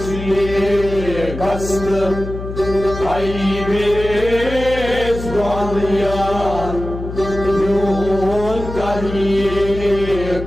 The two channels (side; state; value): left; noise; hum, 9 dB below the sound